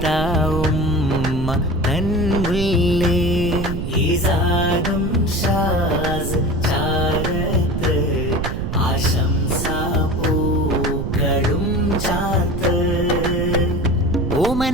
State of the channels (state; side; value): noise; right; rumble, 3 dB below the sound